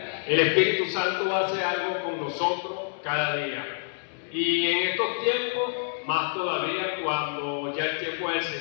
El Espíritu Santo hace algo con nosotros cada día. Y en estos tiempos, más todavía cuando ya el tiempo del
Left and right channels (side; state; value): right; silent; 60 dB below the other